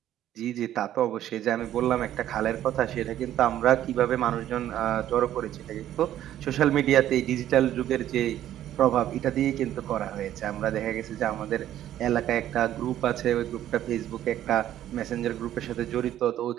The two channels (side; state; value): left; quieter; 12.1 dB